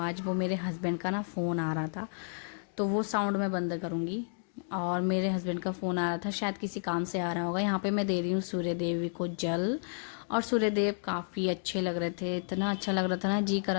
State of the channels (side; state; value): right; silent; digital silence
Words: वो मेरे हस्बैंड का ना फ़ोन आ रहा था, तो वो साउंड मैं बंद करूँगी। और मेरे हस्बैंड का फ़ोन आ रहा था, शायद किसी काम से आ रहा होगा। यहाँ पे मैं दे रही हूँ सूर्य देवी को जल, और सूर्यदेव काफ़ी अच्छे लग रहे थे, इतना अच्छा लग रहा था ना, जी कर